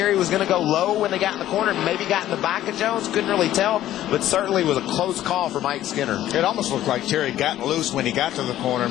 was going to go low when they got in the corner, maybe got in the back of Jones. Couldn't really tell, but certainly was a close call for Mike Skinner. It almost looked like Terry got loose when he got to the corner.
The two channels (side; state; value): right; quieter; 13.1 dB